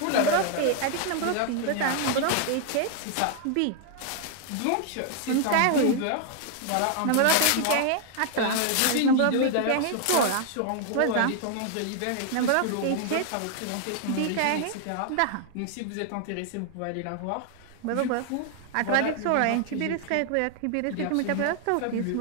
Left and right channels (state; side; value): different; both; correlation 0.00